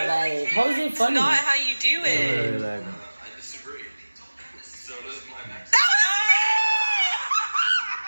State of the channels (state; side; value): inverted; both; correlation -1.00